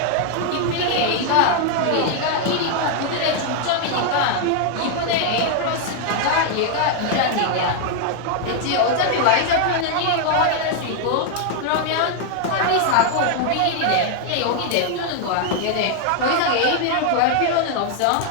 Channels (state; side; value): different; both; correlation 0.00